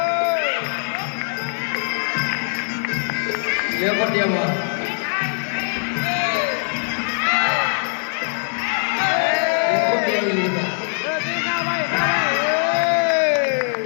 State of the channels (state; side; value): silent; right; digital silence